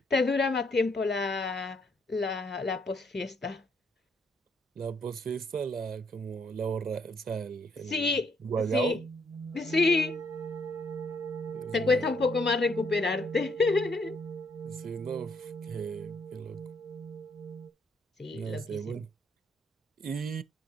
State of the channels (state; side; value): normal; both; correlation 0.70